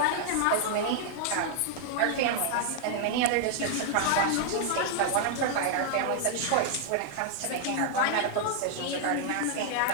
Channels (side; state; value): both; different; correlation -0.01